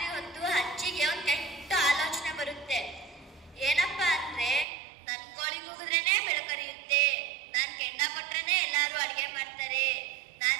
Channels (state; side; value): drops out; left; at 4.7 s